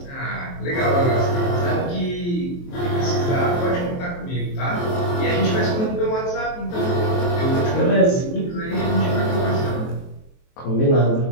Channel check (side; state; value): right; late; 23 ms